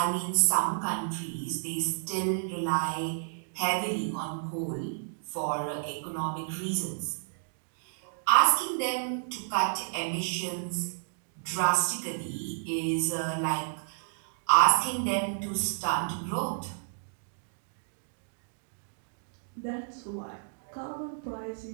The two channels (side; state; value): left; silent; digital silence